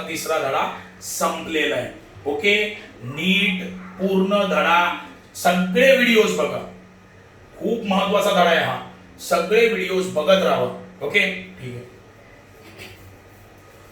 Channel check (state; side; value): identical; both; correlation 1.00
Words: तिसरा धडा संपलेला आहे. ओके, नीट पूर्ण धडा, सगळे व्हिडिओज बघा. खूप महत्वाचा धडा आहे हा. सगळे व्हिडिओज बघत राहा. ओके, ठीक आहे.